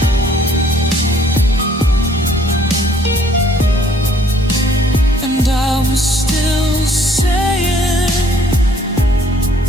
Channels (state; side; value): normal; both; correlation 0.61